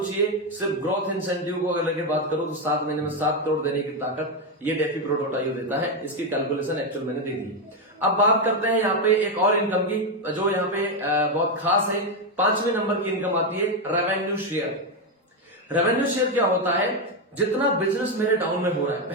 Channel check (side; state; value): both; normal; correlation 0.06